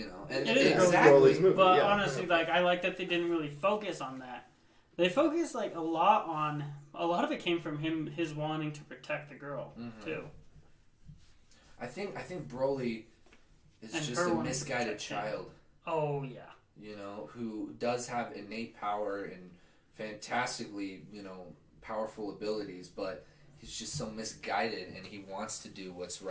know, and it is exactly. Broly's movie. But yeah. honestly, like I like that they didn't really focus on that. They focused like a lot of it came from his wanting to protect the girl too. I think Broly is And just her a wanting to misguided protect him. child. Oh yeah. You know, who does have innate power and fantastically, powerful abilities, but he's just so misguided and he wants to do what's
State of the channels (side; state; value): both; identical; correlation 1.00